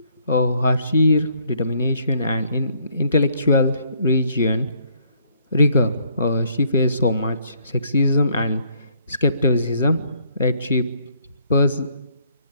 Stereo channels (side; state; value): both; inverted; correlation -0.66